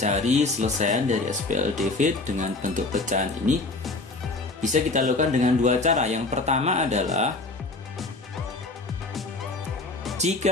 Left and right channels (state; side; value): quieter; right; 3.2 dB